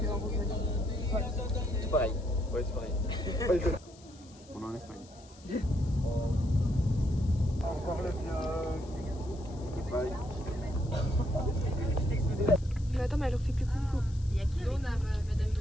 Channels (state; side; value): noise; left; hiss, 24 dB below the sound